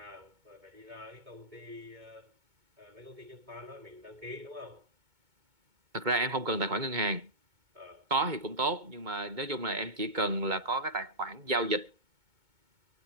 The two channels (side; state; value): left; late; 2.2 ms